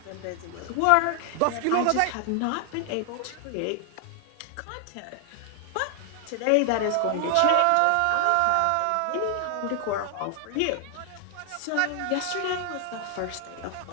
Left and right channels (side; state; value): both; different; correlation 0.00